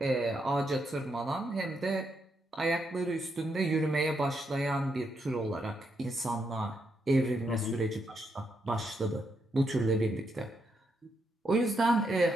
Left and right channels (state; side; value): normal; both; correlation 0.80